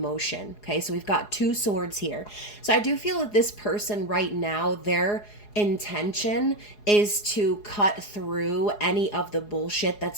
Okay, so we've got two swords here. So I do feel that this person right now, their intention is to cut through any of the bullshit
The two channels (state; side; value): late; right; 4.8 ms